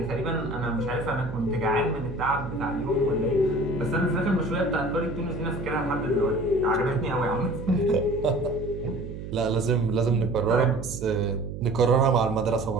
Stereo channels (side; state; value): right; noise; hum, 9 dB below the sound